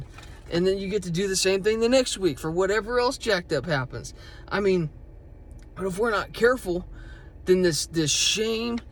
And then you get to do the same thing the next week for whatever else jacked up happens. I mean, but if we're not careful, then this shame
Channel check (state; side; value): identical; both; correlation 1.00